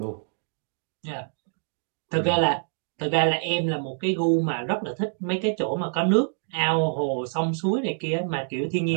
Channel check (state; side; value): silent; left; digital silence